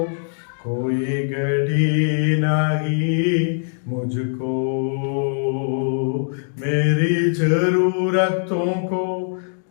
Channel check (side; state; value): right; silent; digital silence